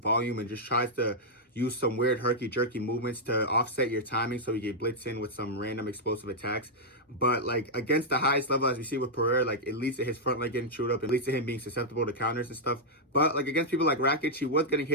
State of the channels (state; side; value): normal; both; correlation -0.06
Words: volume and just tries to use some weird herky-jerky movements to offset your timing so you get blitzed in with some random explosive attacks. But like against the highest level, as we see with Pereira, like it leads to his front leg getting chewed up. It leads to him being susceptible to counters and stuff. But like against people like Rakic, he was getting